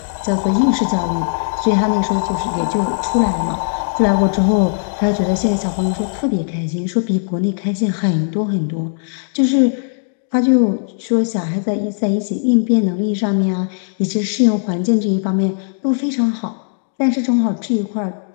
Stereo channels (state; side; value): silent; right; digital silence